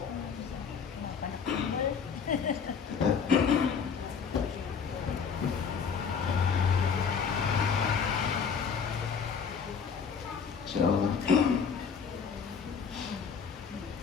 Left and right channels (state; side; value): quieter; right; 6.3 dB